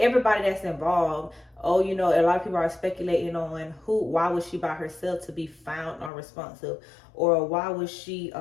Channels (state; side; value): drops out; right; at 6.1 s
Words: that's involved, a lot of people are speculating on why was she by herself to be found unresponsive, or why was she